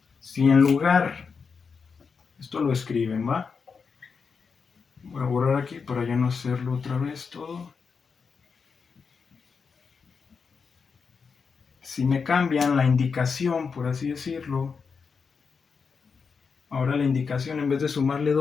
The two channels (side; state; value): right; quieter; 5.5 dB